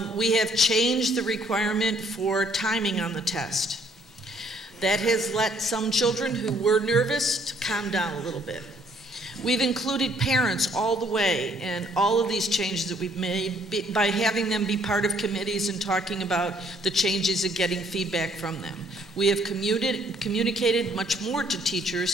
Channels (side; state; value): both; normal; correlation 0.64